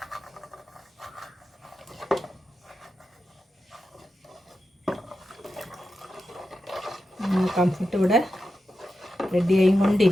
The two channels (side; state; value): both; normal; correlation 0.90